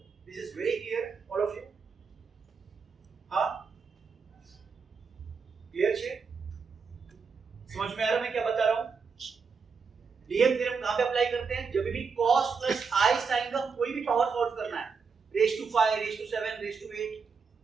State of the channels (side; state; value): left; quieter; 5.4 dB